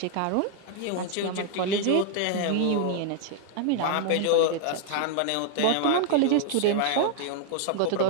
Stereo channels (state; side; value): different; both; correlation 0.00